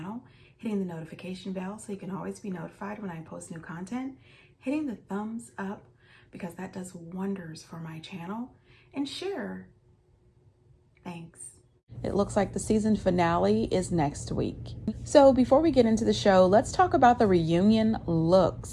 hitting the notification bell so you can always be notified when I post new content, hitting the thumbs up because that does wonders for my channel, and share. Thanks. It looks like the season finale is next week. So before we get into the show, let's talk about the reunion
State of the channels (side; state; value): both; identical; correlation 1.00